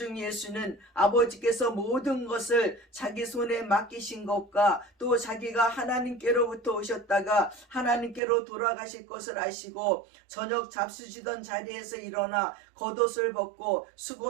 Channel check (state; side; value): drops out; left; at 8.2 s